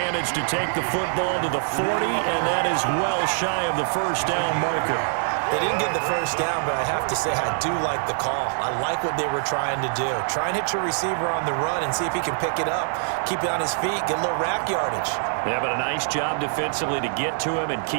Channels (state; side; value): silent; left; digital silence